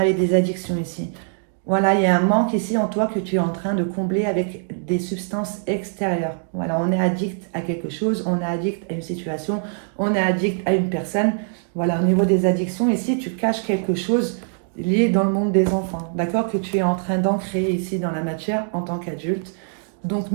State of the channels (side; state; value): left; silent; digital silence